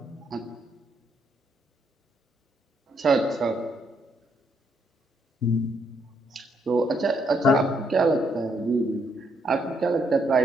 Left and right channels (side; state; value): both; normal; correlation 0.73